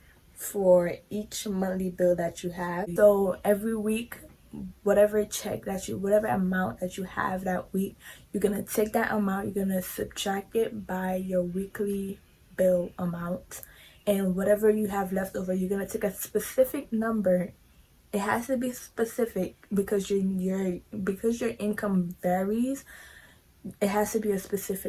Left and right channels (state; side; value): identical; both; correlation 1.00